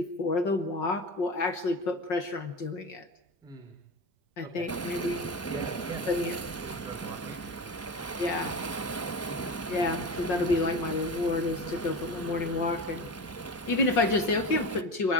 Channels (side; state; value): both; normal; correlation 0.26